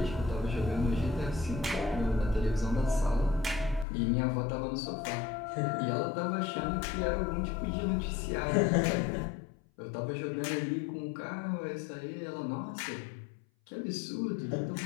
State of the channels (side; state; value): right; drops out; at 3.9 s